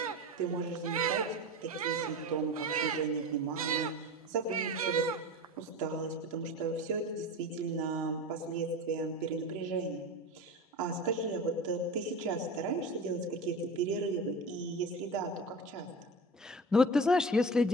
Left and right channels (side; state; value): both; normal; correlation 0.31